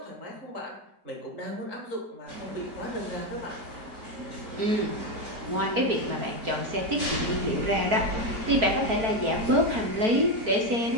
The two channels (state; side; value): late; left; 4.5 ms